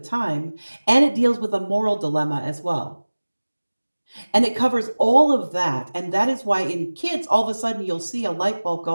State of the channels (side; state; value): both; inverted; correlation -1.00